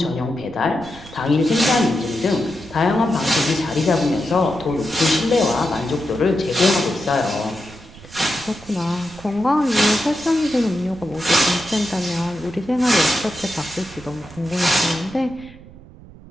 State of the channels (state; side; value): noise; right; rumble, 19 dB below the sound